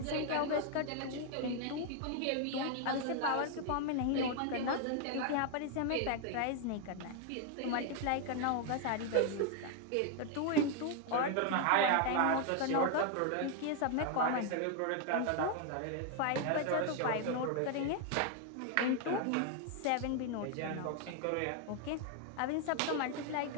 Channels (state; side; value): different; both; correlation 0.01